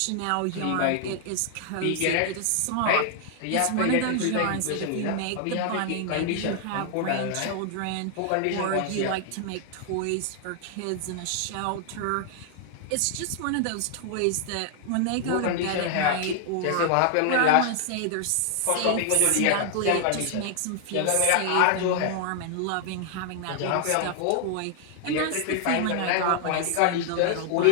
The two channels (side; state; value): both; different; correlation 0.00